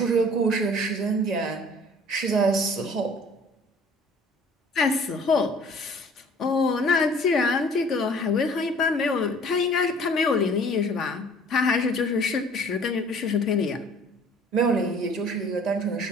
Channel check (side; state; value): both; normal; correlation 0.52